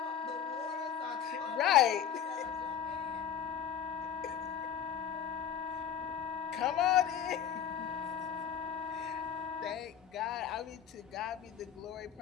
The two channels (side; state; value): right; quieter; 8.7 dB